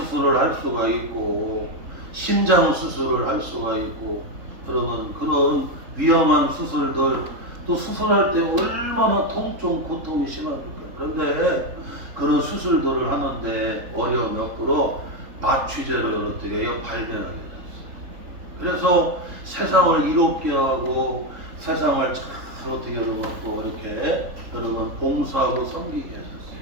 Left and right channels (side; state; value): left; late; 3.6 ms